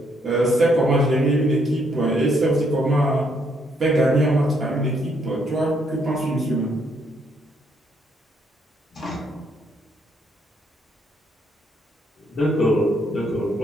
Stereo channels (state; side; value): normal; both; correlation 0.72